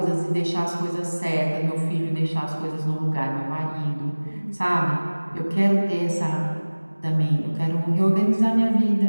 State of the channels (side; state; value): both; inverted; correlation -1.00